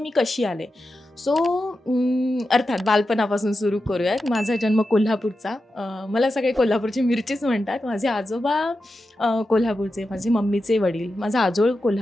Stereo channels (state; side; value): normal; both; correlation 0.90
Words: कशी आले. सो अर्थात बालपणापासून सुरू करूयात. माझा जन्म कोल्हापूरचा, मला सगळे कोल्हापूरची मिरचीच म्हणतात. माझे आजोबा कोल्हापूरचे, माझे मम्मीचे वडील, माझा आजोळ